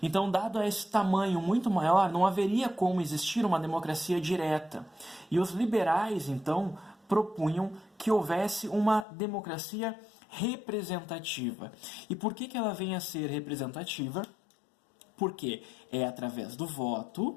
Então, dado esse tamanho muito maior, não haveria como existir uma democracia direta. E os liberais, então, propunham que houvesse uma democracia representativa. E por que ela vem a ser representativa? Porque é através do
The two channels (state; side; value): drops out; right; at 9.1 s